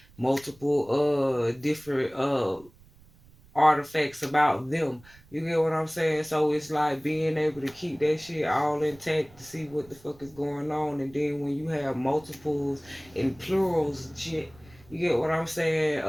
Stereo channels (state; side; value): noise; right; rumble, 26 dB below the sound